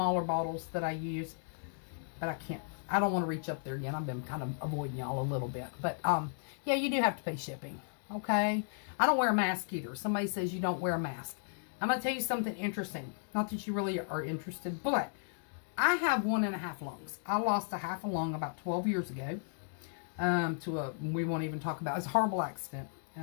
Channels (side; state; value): right; silent; digital silence